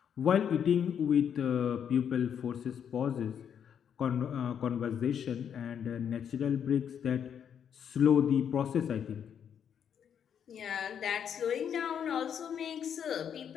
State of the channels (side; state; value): right; quieter; 8.3 dB